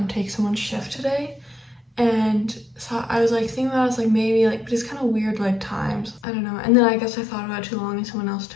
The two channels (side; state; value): right; drops out; at 6.2 s